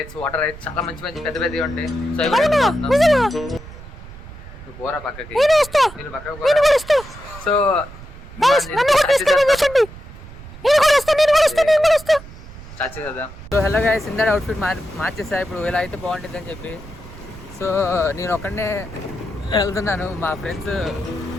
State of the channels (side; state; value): right; noise; rumble, 16 dB below the sound